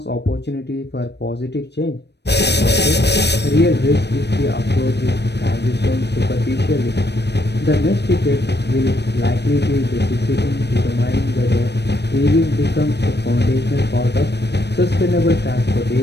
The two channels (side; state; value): right; late; 0.50 ms